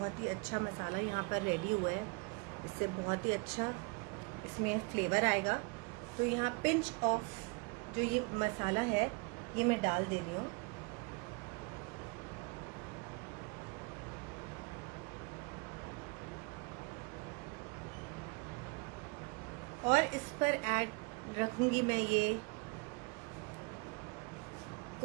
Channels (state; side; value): quieter; left; 29.9 dB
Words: ही अच्छा मसाला यहाँ पर रेडी हुआ है। इससे बहुत ही अच्छा इसमें फ्लेवर आएगा। तो यहाँ पिंच ऑफ जो ये मसाला है ये मैं डाल दे रही हूँ। और इस पर ऐड रखूंगी मैं ये